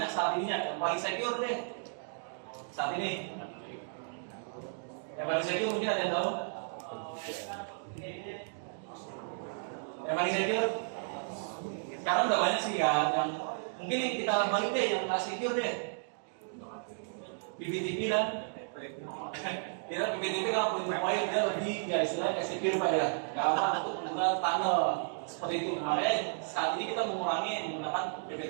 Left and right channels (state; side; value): silent; left; digital silence